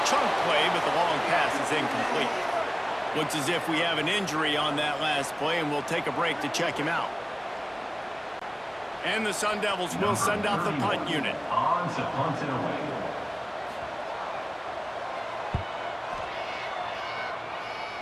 chunk play, but the long pass is incomplete. Looks as if we have an injury on that last play, and we'll take a break to check him out. And the Sun Devils will send out the punt unit. On to punt it away.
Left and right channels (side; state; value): both; identical; correlation 1.00